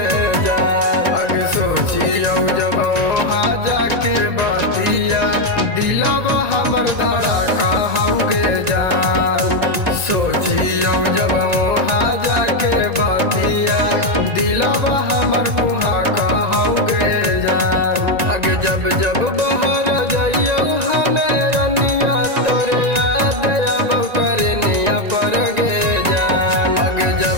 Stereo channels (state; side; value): late; left; 1.9 ms